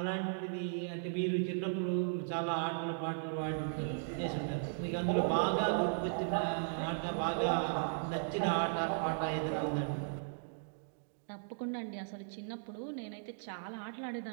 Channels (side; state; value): left; silent; digital silence